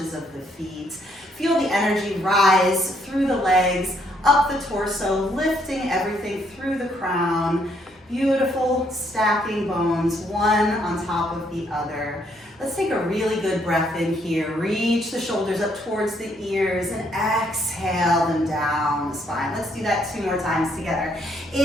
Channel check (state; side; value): normal; both; correlation 0.71